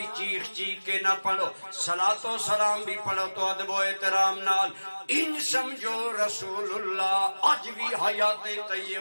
چیخ کے نہ پڑھو، صلاۃ و سلام بھی پڑھو تو ادب و احترام نال۔ ان سمجھو رسول اللہ اج بھی حیات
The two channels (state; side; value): inverted; both; correlation -1.00